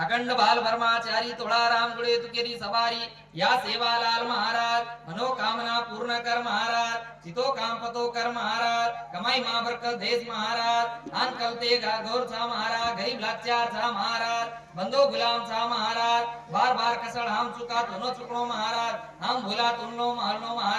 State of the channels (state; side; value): identical; both; correlation 1.00